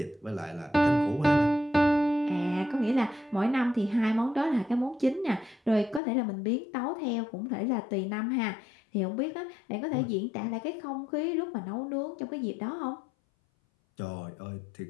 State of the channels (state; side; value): drops out; right; at 6.0 s